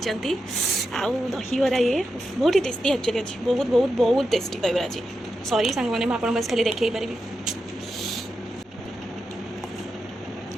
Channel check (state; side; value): normal; both; correlation 0.88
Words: आउ दहीबार ये बहुत ही टेस्टी एक्चुअली अच्छी बहुत बहुत बहुत टेस्टी दहीबार अच्छी सॉरी सांग मैंने आप खाली देखी पारि